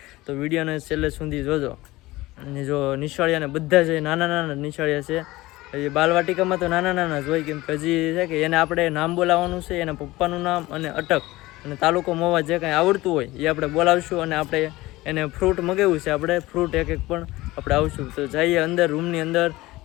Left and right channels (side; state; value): right; quieter; 19.1 dB